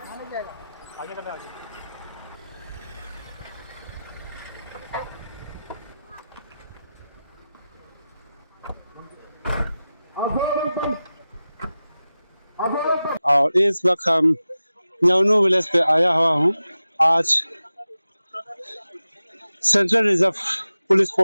और इस वक्त हम न्योनू विलेज पे आया हुआ हूँ। आज central reserve police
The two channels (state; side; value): inverted; both; correlation -0.94